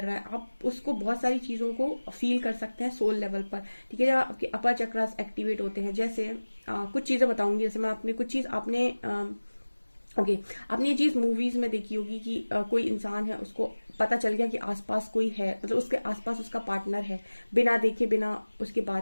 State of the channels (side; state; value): both; inverted; correlation -1.00